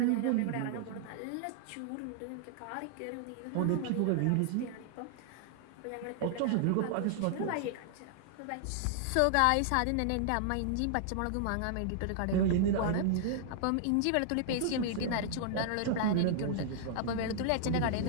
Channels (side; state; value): both; different; correlation -0.01